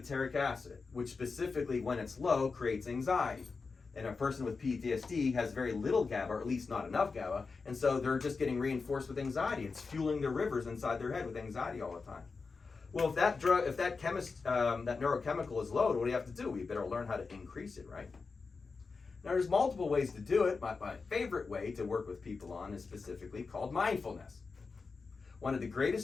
acid, which specifically, when it's low, creates anxiety. And a person with PTSD has very little GABA, or at least not enough GABA, and so they're just getting reinforced with anxiety. It's fueling the rivers inside their head with anxiety all the time. Well, if that neurochemical is low, what do we have to do? We better learn how to increase it, right? Now, there's multiple ways to do it. My favorite way to work with people on is specifically called mindfulness. One of the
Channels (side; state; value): right; quieter; 4.6 dB